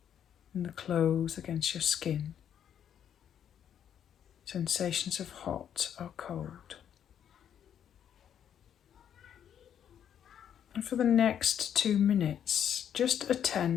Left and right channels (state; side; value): quieter; right; 9.2 dB